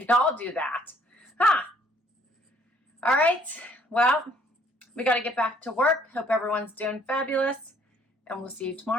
all do that. Huh? All right. Well, we got to get back to work. Hope everyone's doing fabulous. And we'll see you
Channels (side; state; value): both; normal; correlation 0.62